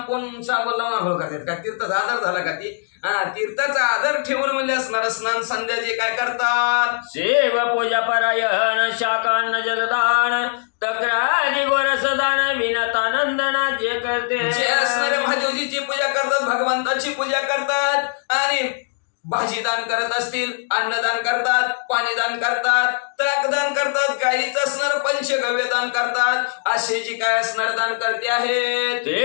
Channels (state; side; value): silent; right; 65 dB below the other